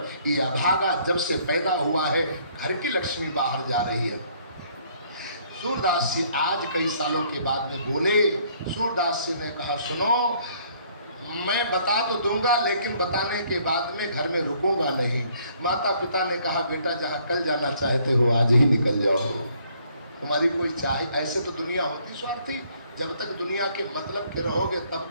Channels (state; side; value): inverted; both; correlation -0.64